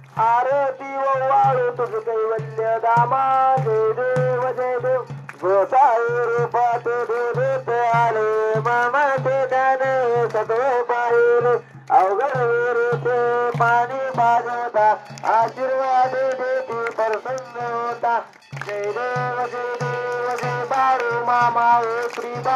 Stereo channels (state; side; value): identical; both; correlation 1.00